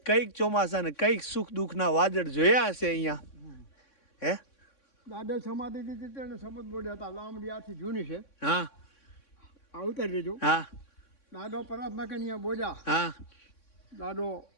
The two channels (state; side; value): late; right; 3.6 ms